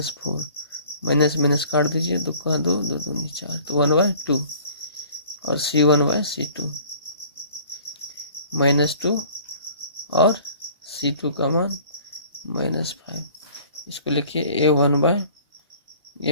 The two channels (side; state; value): both; inverted; correlation -0.51